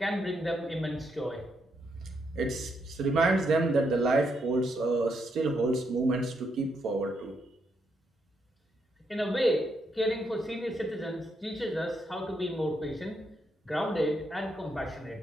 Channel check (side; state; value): both; normal; correlation 0.78